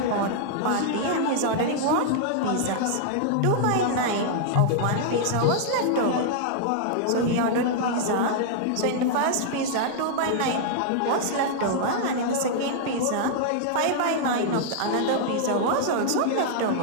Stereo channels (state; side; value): different; both; correlation -0.01